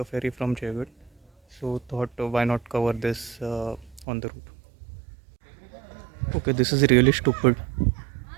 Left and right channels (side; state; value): left; drops out; at 4.0 s